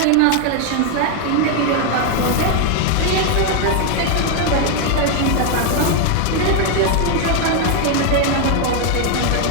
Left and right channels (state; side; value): different; both; correlation 0.01